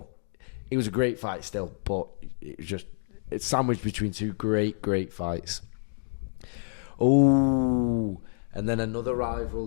It was a great fight still, but it's sandwiched between two great fights. Oh, and then another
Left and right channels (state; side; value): silent; right; digital silence